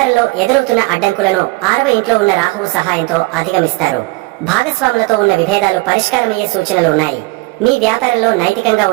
ఎదురవుతున్న అడ్డంకులను 6వ ఇంట్లో ఉన్న రాహువు సహాయంతో అధిగమిస్తారు. భాగస్వాములతో ఉన్న విభేదాలు పరిష్కారమయ్యే సూచనలు ఉన్నాయి. మీ వ్యాపారంలో నైతికంగా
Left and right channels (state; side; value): quieter; left; 23.0 dB